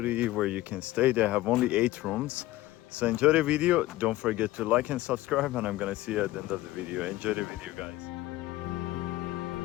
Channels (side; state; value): right; quieter; 16.9 dB